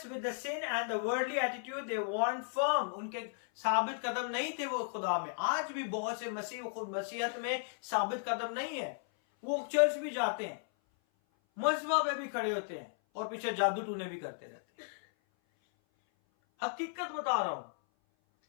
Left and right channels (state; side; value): silent; right; 54 dB below the other